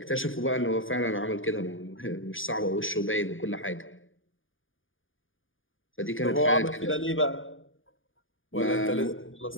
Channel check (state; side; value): late; right; 0.58 ms